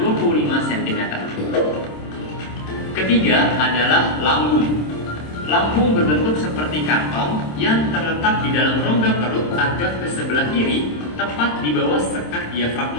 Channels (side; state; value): right; late; 27 ms